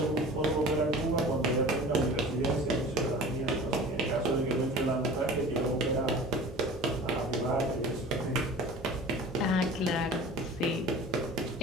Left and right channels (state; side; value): normal; both; correlation 0.40